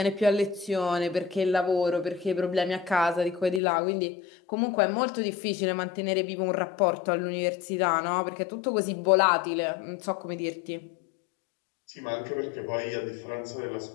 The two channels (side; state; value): right; drops out; at 3.6 s